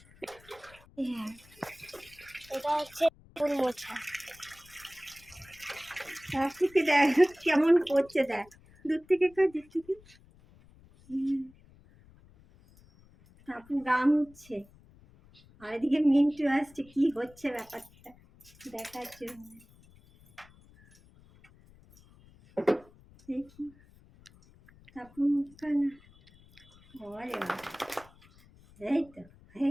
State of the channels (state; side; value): noise; left; rumble, 26 dB below the sound